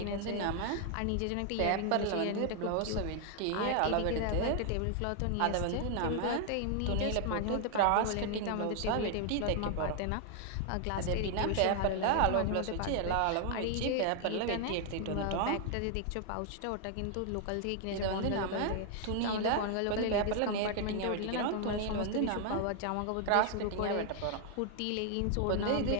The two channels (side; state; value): both; different; correlation 0.00